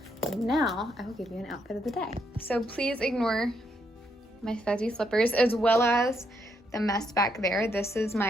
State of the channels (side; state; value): both; normal; correlation 0.76